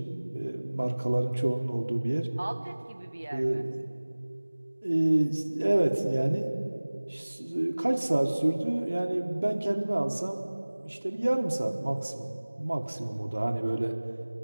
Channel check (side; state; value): both; inverted; correlation -1.00